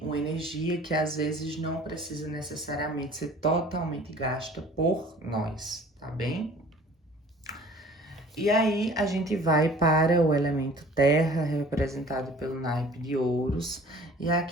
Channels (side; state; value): both; normal; correlation 0.49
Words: uma energia que às vezes não precisa necessariamente ser totalmente gasta por nós, tá bem? E aí a gente vai para o elemento terra, representado pelo naipe de ouros. E